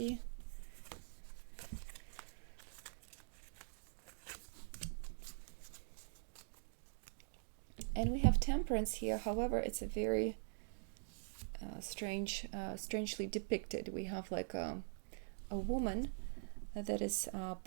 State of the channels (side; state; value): left; silent; digital silence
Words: And we have temperance here. However, it's a very strangely depicted. We have like a woman that is